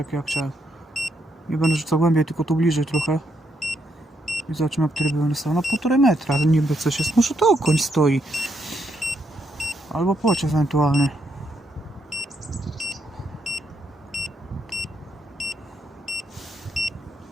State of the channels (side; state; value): both; normal; correlation 0.77